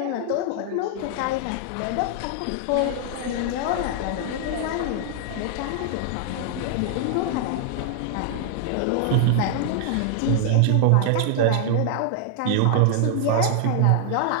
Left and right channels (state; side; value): different; both; correlation 0.00